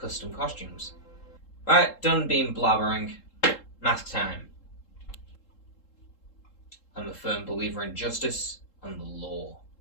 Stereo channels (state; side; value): late; right; 3.7 ms